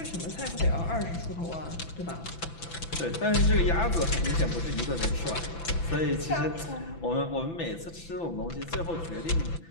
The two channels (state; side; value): late; right; 6.0 ms